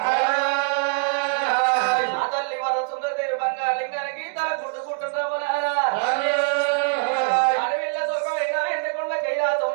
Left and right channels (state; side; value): quieter; left; 34.0 dB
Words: ఆ తల్లి వర సుందరదేవి బంగారు లింగానికి తల గుద్దుకుంటున్నా అడవిల్ల సుఖమైన ఎండకొండ కైలాసం